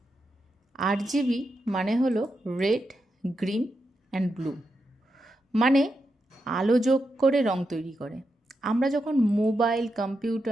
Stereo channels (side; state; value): both; normal; correlation 0.86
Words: আরজিবি মানে হলো রেড, গ্রিন অ্যান্ড ব্লু, মানে আলো যোগ করে রং তৈরি করে। আমরা যখন মোবাইল,